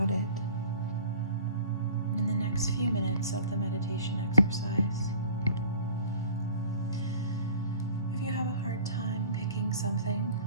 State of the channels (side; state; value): both; inverted; correlation -0.46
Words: it in the next few minutes of the meditation exercise. If you have a hard time picking something,